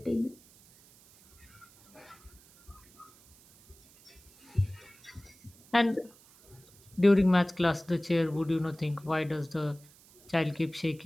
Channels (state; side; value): noise; right; hiss, 26 dB below the sound